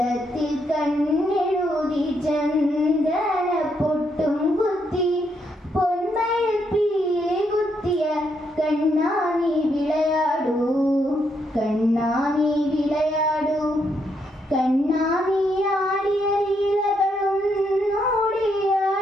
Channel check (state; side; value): normal; both; correlation 0.77